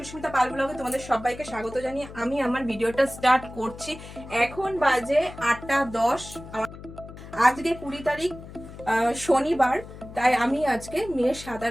Pal ব্লগে তোমাদের সবাইকে স্বাগত জানিয়ে আমি আমার ভিডিওটা স্টার্ট করছি। এখন বাজে 8:10। আজকে 20 তারিখ শনিবার। তাই আমি আজকে মেয়ের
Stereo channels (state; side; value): noise; left; hum, 15 dB below the sound